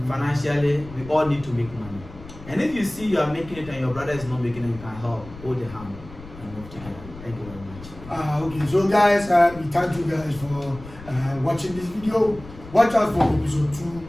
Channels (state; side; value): noise; left; rumble, 16 dB below the sound